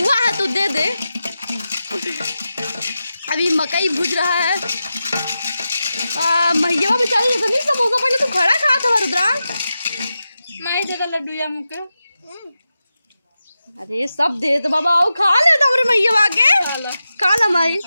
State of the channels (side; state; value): both; inverted; correlation -0.91